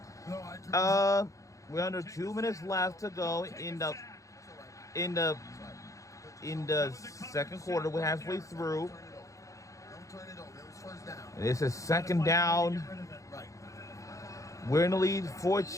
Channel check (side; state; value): right; late; 0.16 ms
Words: to? We're under 2 minutes left to go in the second quarter. We're halfway through. This is second down. We're in the lead